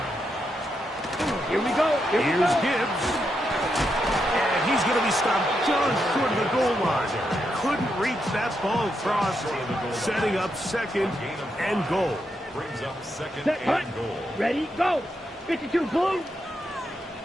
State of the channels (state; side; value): normal; both; correlation 0.82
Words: Here we go. Here's Gibbs. And he's going to be stopped just short of the goal line. Couldn't reach that ball across, setting up second and goal. Brings up second Set, and goal. Ready, go. 52, blue.